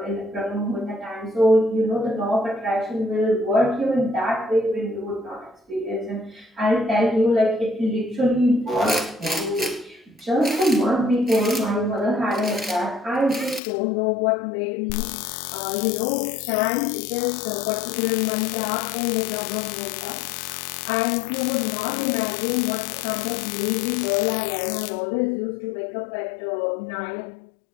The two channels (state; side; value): drops out; right; at 13.6 s